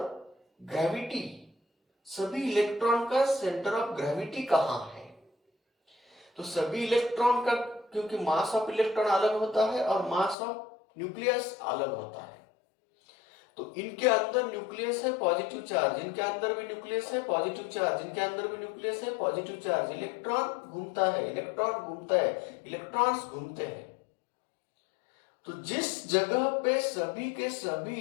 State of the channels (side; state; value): right; drops out; at 10.4 s